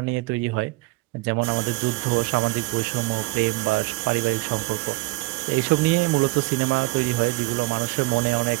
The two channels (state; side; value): quieter; left; 23.4 dB